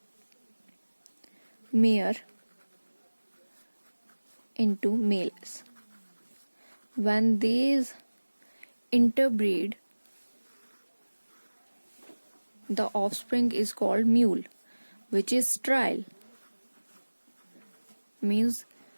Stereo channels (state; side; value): inverted; both; correlation -1.00